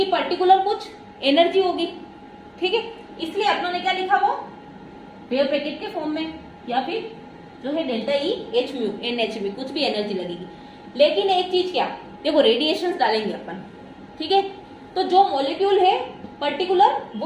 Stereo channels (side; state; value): both; identical; correlation 1.00